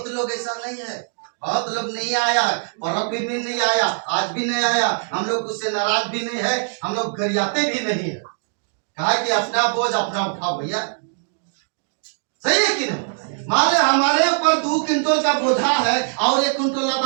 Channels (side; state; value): left; silent; digital silence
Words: लोग ऐसा नहीं है, बहुत लोग नहीं आया, पर्व भी नहीं आया, आज भी नहीं आया। हम लोग उससे नाराज भी नहीं है, हम लोग गरियाते भी नहीं है। कहा कि अपना बोझ अपना उठाओ भैया, सही है कि नहीं। मान ले हमारे ऊपर 2 क्विंटल का बोझा है और 1 क्विंटल